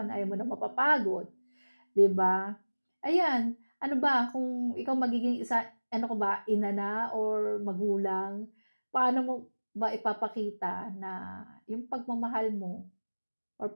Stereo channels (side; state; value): both; inverted; correlation -1.00